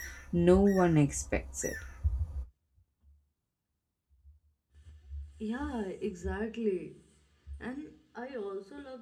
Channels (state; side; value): identical; both; correlation 1.00